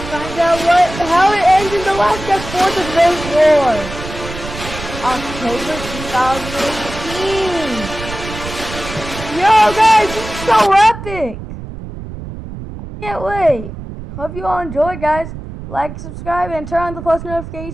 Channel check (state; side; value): noise; right; rumble, 10 dB below the sound